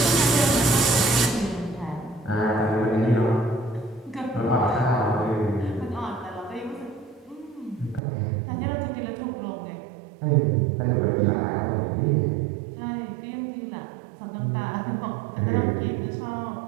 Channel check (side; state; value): left; drops out; at 8.0 s